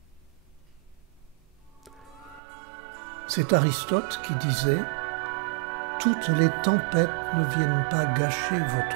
C'est Aristote qui disait « Toutes les tempêtes ne viennent pas gâcher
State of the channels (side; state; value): left; drops out; at 2.4 s